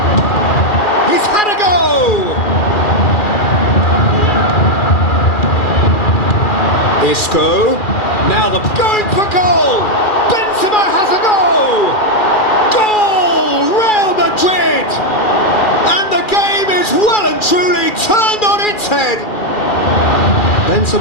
He's had a go! Isco. Now the going for goal! Benzema has a go! Goal! Real Madrid! And the game is well and truly turned on its head.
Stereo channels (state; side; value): late; right; 2.4 ms